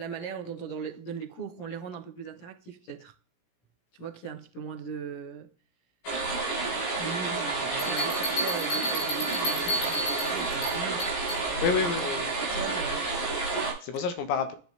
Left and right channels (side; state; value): right; late; 17 ms